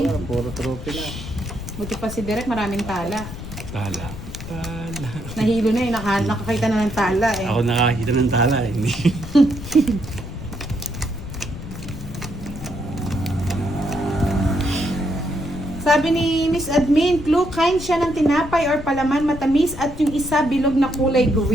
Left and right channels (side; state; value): left; noise; rumble, 11 dB below the sound